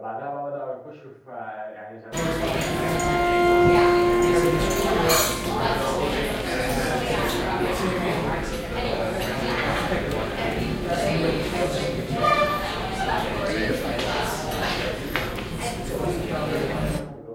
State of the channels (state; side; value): identical; both; correlation 1.00